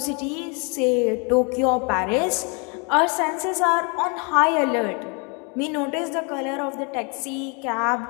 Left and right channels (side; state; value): right; quieter; 33.6 dB